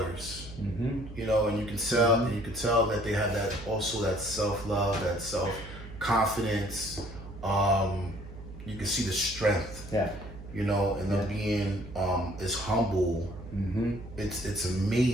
And you can tell that they have that self-love, that self-confidence. You can see the strength. Yeah. And them being as humble. It's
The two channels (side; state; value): right; noise; hum, 14 dB below the sound